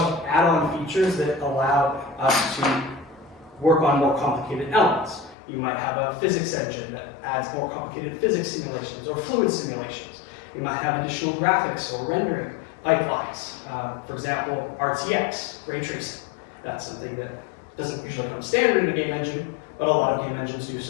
of add-on features that allow us to work on more complicated elements. You might have a physics engine that adds more complicated physics simulations or fluid simulations. You might have additional graphics or rendering pipelines. For example, RTX, ray tracing. That's something that doesn't usually come standard in a game engine, but a lot of game engines do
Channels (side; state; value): right; drops out; at 5.4 s